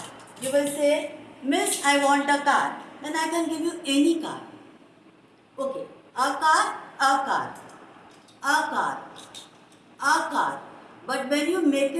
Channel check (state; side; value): identical; both; correlation 1.00